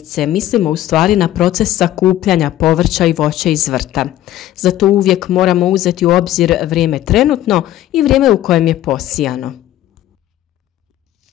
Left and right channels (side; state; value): right; quieter; 13.5 dB